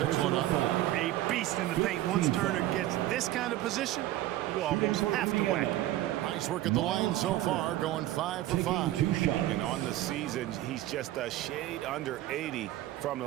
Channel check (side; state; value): left; quieter; 14.9 dB